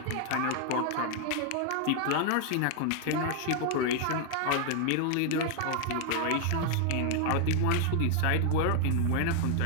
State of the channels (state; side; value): different; both; correlation 0.00